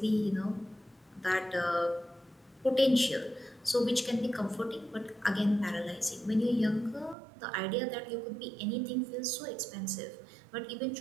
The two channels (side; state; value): left; drops out; at 7.2 s